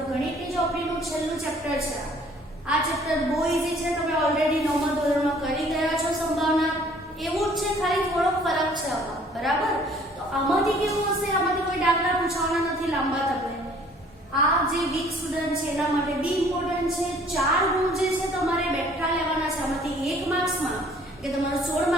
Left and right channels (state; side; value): normal; both; correlation 0.56